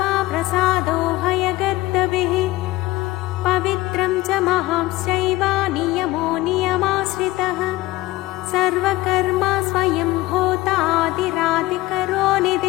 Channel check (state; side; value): quieter; right; 18.8 dB